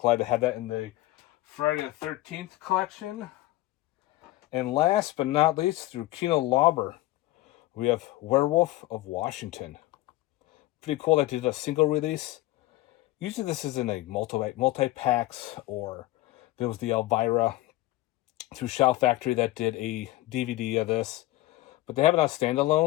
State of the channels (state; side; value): quieter; right; 17.3 dB